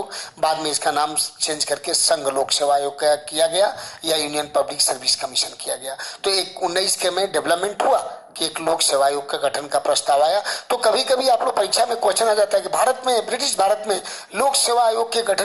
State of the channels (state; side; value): identical; both; correlation 1.00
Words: बाद में इसका नाम चेंज करके संघ लोक सेवा आयोग किया गया या यूनियन पब्लिक सर्विस कमीशन किया गया। तो एक 19 के में डेवलपमेंट हुआ कि एक लोक सेवा आयोग का गठन का प्रस्ताव आया। तो कभी कभी आप लोग परीक्षा में क्वेश्चन आ जाता है कि ब्रिटिश भारत में लोक सेवा आयोग के